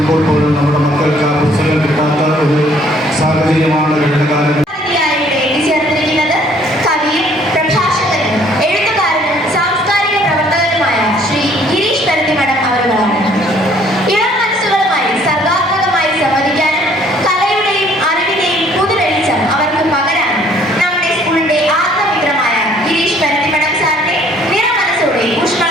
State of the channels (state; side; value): normal; both; correlation 0.60